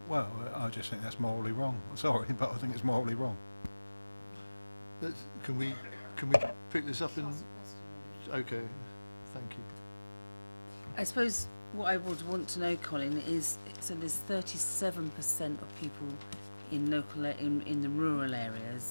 Well, I just think that's morally wrong. Sorry, but I think it's morally wrong. Can we pick this up in? Okay, thank you. I suppose what I would want to know, Colin, is so there's 37% of people in in the rural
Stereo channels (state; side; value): inverted; both; correlation -1.00